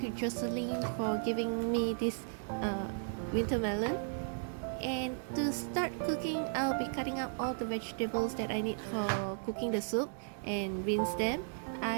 Jocelyn for giving me this winter melon. And to start cooking, I'll be cutting up all the vegetables that I need for cooking the soup and rinse them.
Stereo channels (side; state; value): left; silent; digital silence